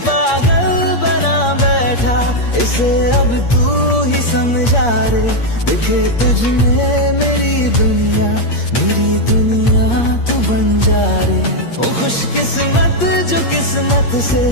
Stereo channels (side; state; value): right; late; 8.6 ms